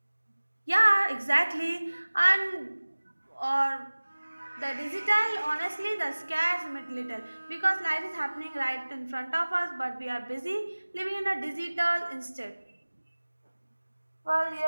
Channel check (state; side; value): inverted; both; correlation -1.00